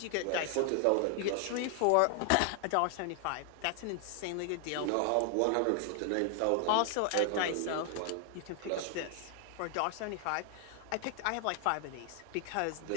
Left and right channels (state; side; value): different; both; correlation 0.00